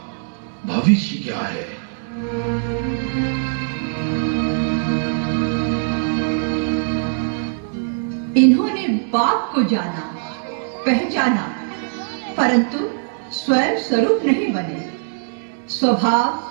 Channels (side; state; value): left; silent; 65 dB below the other